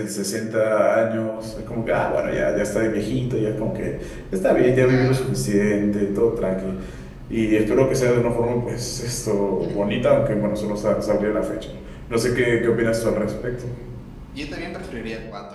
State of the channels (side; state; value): both; identical; correlation 1.00